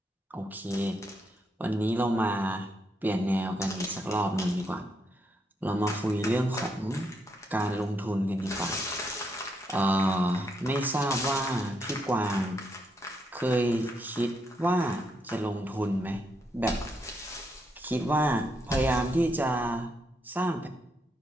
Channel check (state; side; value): normal; both; correlation 0.78